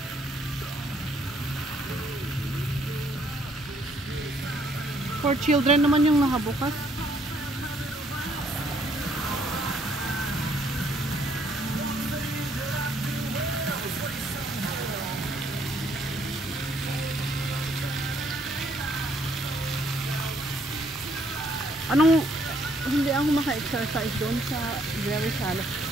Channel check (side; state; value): both; normal; correlation 0.67